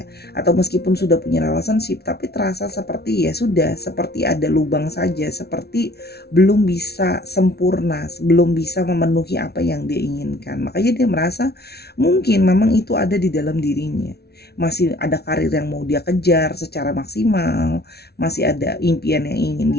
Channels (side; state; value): right; late; 0.47 ms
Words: atau meskipun sudah punya relationship tapi terasa seperti ya sudah seperti ada lubang saja, seperti belum bisa sempurna, belum bisa memenuhi apa yang dia inginkan. Makanya dia merasa mungkin memang itu ada di dalam dirinya. Masih ada karir yang mau dia kejar secara maksimal, masih ada impian yang ingin